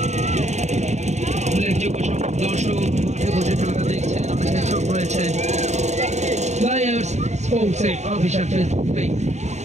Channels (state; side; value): late; left; 0.33 ms